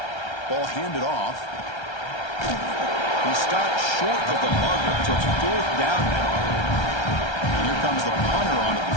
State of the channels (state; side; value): late; right; 1.3 ms